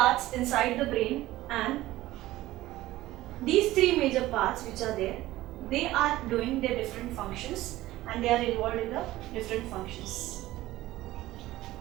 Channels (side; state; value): left; quieter; 16.5 dB